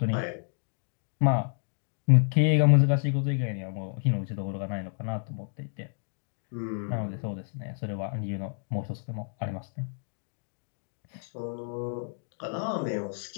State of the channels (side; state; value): right; silent; digital silence